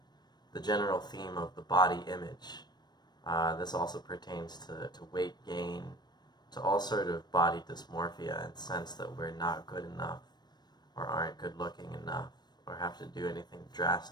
the general theme of the body image. This also pertains to weight gain, to all sort of body dysmorphia and sense that we're not good enough or aren't good looking enough or have to do anything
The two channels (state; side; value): late; right; 0.20 ms